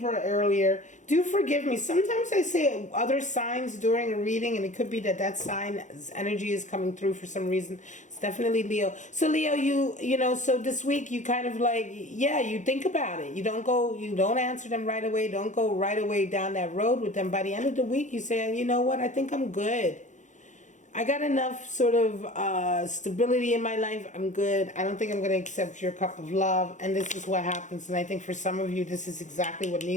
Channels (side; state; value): right; late; 0.35 ms